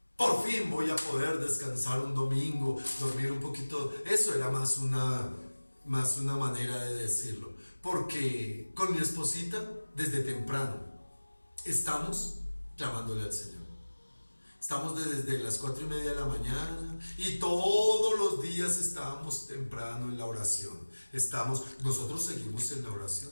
Por fin voy a poder descansar un domingo, dormir un poquito. Eso era más una manera de decirlo. Porque con mi esposita, desde temprano, estamos clamándole al Señor. Estamos desde las 4:30 de la mañana y todos los días estábamos temprano en la oración. Nosotros seguimos en la oración,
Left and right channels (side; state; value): both; inverted; correlation -1.00